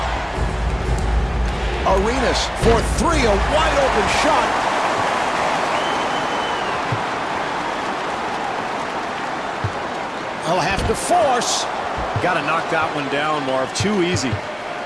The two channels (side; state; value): both; identical; correlation 1.00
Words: Arenas for 3, a wide open shot. He'll have to force. Got to knock that one down, Marv. Too easy.